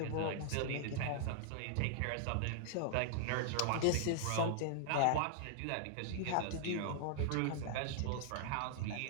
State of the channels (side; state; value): both; different; correlation -0.01